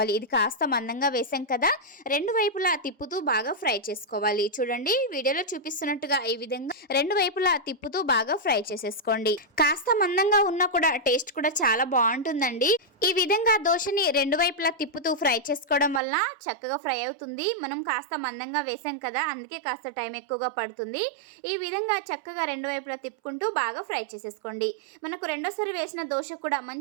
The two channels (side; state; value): left; drops out; at 16.0 s